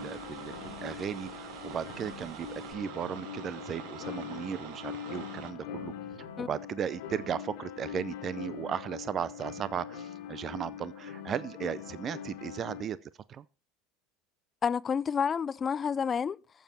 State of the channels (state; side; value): normal; both; correlation 0.56